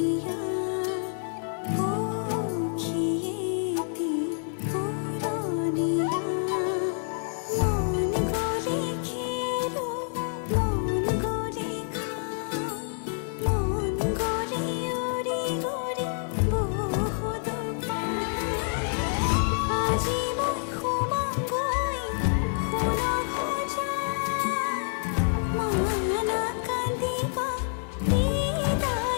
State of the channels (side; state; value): right; silent; 60 dB below the other